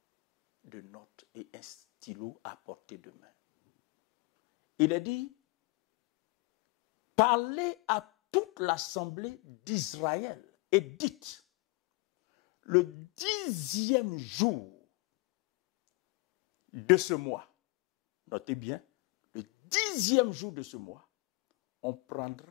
de notes et un stylo à portée de main. Il est dit, parlez à toute l'assemblée d'Israël et dites, le 10e jour de ce mois, notez bien, le 10e jour de ce mois, on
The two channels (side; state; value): right; quieter; 25.7 dB